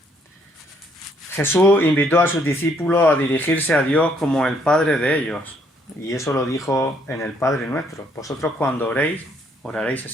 Jesús invitó a sus discípulos a dirigirse a Dios como el Padre de ellos. Y eso lo dijo en el Padre Nuestro. Vosotros cuando oréis, oraréis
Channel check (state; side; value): normal; both; correlation 0.68